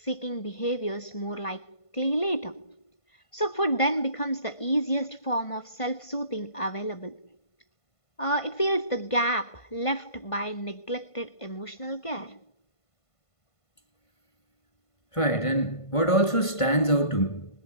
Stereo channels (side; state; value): right; late; 1.5 ms